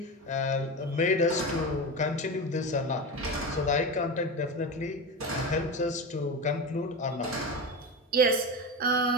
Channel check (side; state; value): both; normal; correlation 0.22